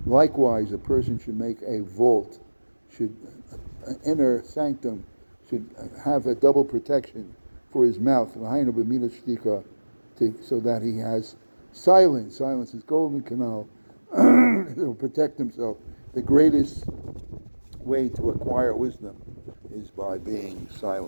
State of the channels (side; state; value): both; inverted; correlation -1.00